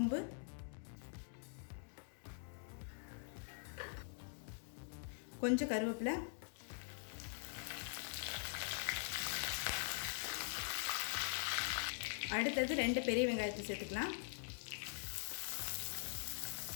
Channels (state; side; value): silent; right; digital silence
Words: கொஞ்சம் கருவேப்பிலை, அடுத்தது 2 பெரிய வெங்காயத்தை சேர்த்துக்கலாம்.